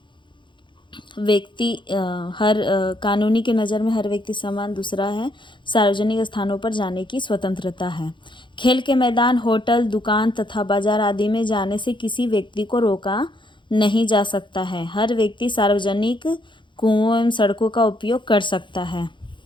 कानूनी की नज़र में हर व्यक्ति समान। दूसरा है सार्वजनिक स्थानों पर जाने की स्वतंत्रता है। खेल के मैदान, होटल, दुकान तथा बाजार आदि में जाने से किसी व्यक्ति को रोका नहीं जा सकता है। हर व्यक्ति सार्वजनिक कुओं एवं सड़कों का उपयोग कर सकता है।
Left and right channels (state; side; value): late; right; 0.23 ms